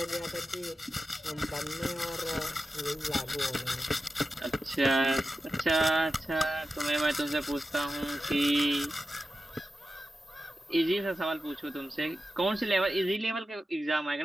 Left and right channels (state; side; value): normal; both; correlation 0.92